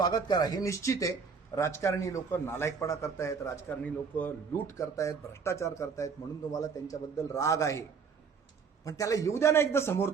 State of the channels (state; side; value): quieter; left; 5.7 dB